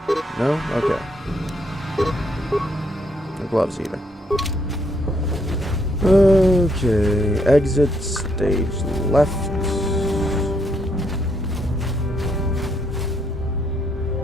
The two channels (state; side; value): normal; both; correlation 0.74